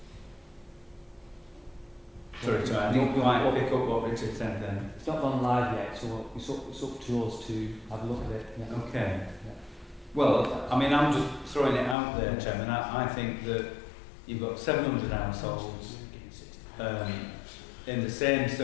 to. Sorry, I didn't quite pick up what Richard said then. It's not gone live yet, so it's up to us to have a look at it. Yeah. Okay. Yeah. Well, I mean, I'm just throwing it out there, Chairman. I think that you've got 700 households in the same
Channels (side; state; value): right; drops out; at 12.0 s